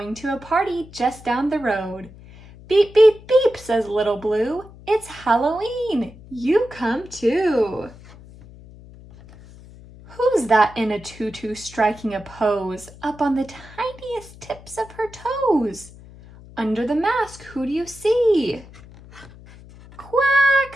to a party just down the road. Beep, beep, beep, says Little Blue. It's Halloween. You come too. Who's that in a tutu striking a pose up on the tiniest tips of her toes? Under the mask, who do you see? Quack,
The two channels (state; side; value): noise; left; hum, 20 dB below the sound